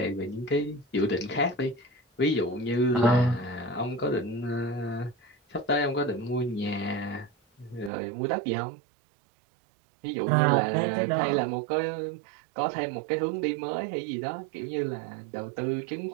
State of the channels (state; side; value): drops out; left; at 7.9 s